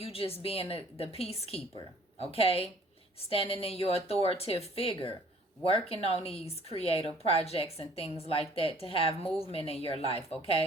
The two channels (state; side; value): normal; both; correlation 0.55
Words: just being the peacekeeper, okay, standing in your authoritative figure, working on these creative projects and things like that to have movement in your life.